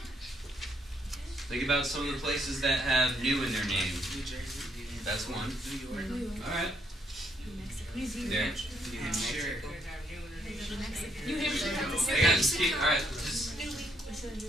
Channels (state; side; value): normal; both; correlation 0.72